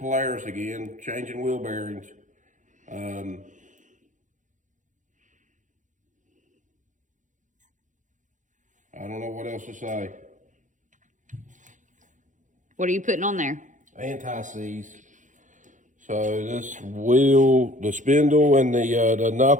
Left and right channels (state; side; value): late; left; 0.36 ms